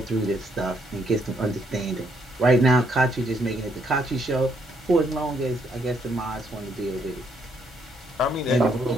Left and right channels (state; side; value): normal; both; correlation 0.72